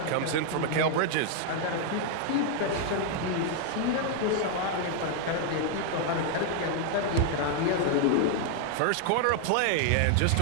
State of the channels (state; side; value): different; both; correlation 0.00